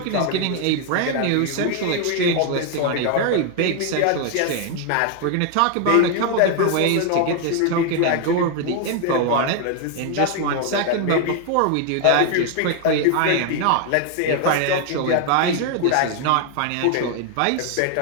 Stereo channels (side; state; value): both; different; correlation 0.00